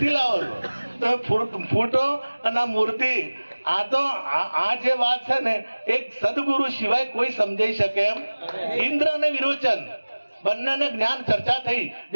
લાવો છો? તમે ફોટો અને મૂર્તિ આ જે વાત છે ને એક સદગુરુ સિવાય કોઈ સમજાઈ શકે એમ? ઇન્દ્ર અને વિરોચન બંનેને જ્ઞાન ચર્ચા થઈ,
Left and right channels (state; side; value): inverted; both; correlation -1.00